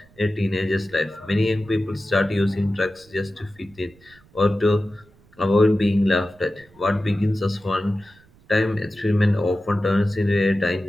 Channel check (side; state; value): right; noise; rumble, 28 dB below the sound